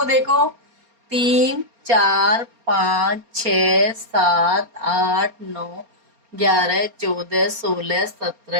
देखो, 3, 4, 5, 6, 7, 8, 9, 11, 14, 16,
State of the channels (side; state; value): left; late; 4.3 ms